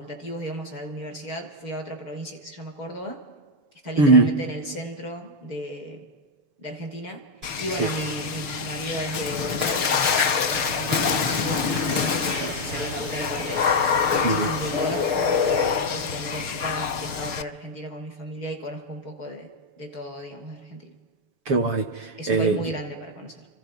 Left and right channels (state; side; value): late; left; 6.6 ms